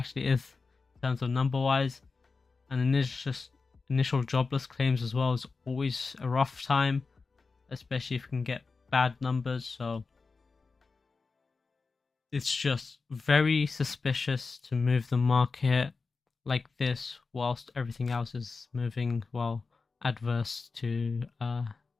is in terms of number wise. And then there's just initial jobless claims as well is always a rough time, especially if you can get bad numbers. So It's just very suspicious to move the market like this whilst everything else is moving well adverse to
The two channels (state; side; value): quieter; right; 4.3 dB